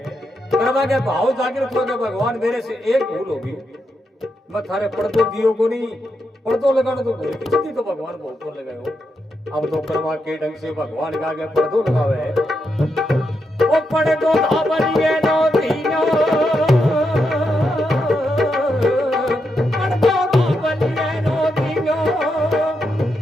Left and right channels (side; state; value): both; normal; correlation 0.83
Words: कर्मा के भाव जागृत हो गए, भगवान मेरे से एक भूल होगी, मैं थारे पर्दो दियो को नहीं, पर्दो लगाना तो भूल खिचड़ी तो भगवान बहुत को लगाए हो। अब तो कर्मा के ढंग से भगवान के आगे पर्दो लगावे है। ओ पर्दो धावलिए नो दीनो, पर्दो धावलिए नो दीनो,